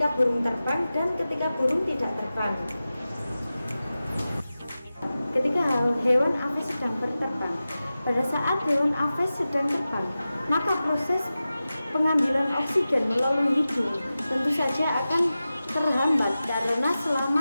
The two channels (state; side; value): inverted; both; correlation -0.95